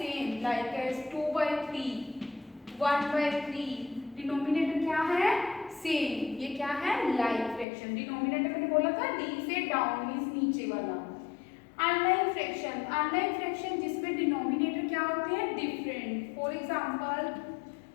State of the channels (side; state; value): right; drops out; at 7.7 s